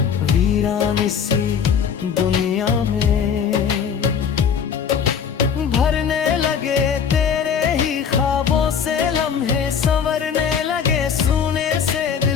वीरान सी दुनिया में। भरने लगे तेरे ही ख्वाबों से लम्हे, संवरने लगे सोने से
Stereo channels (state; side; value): quieter; right; 7.2 dB